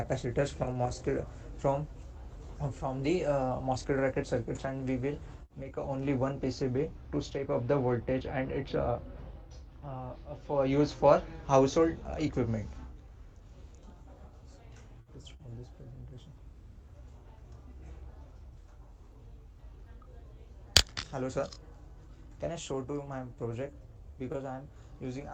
from from the MOSFET bracket circuits, and we will make only one PCB to step up the voltage, and it's for use for household equipment. Let's stop this presentation. Hello, sir. Can I show to my project? Because I'm using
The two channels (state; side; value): identical; both; correlation 1.00